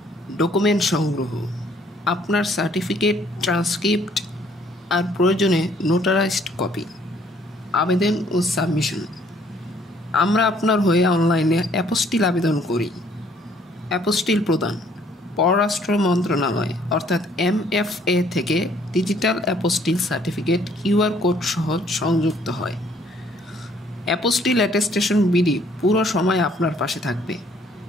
ডকুমেন্ট সংগ্রহ, আপনার সার্টিফিকেট, ট্রান্সক্রিপ্ট আর প্রয়োজনে নোটারাইজড কপি, আবেদন ও সাবমিশন। আমরা আপনার হয়ে অনলাইনে অ্যাপোস্টিল আবেদন করি। অ্যাপোস্টিল প্রদান, পররাষ্ট্র মন্ত্রণালয় অর্থাৎ MFA থেকে digital apostille certificate QR code সহ সংযুক্ত হয়। অ্যাপোস্টিল অ্যাটেস্টেশন বিডি পুরো সময় আপনার পাশে থাকবে।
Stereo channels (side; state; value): both; normal; correlation 0.62